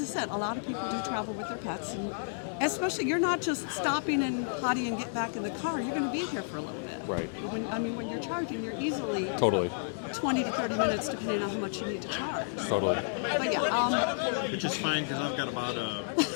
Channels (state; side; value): silent; right; digital silence